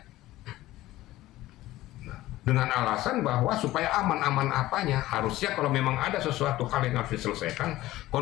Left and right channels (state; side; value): quieter; right; 16.3 dB